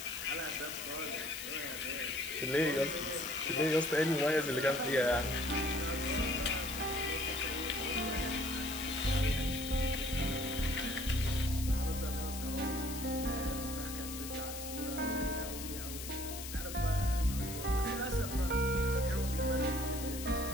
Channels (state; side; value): noise; left; hiss, 8 dB below the sound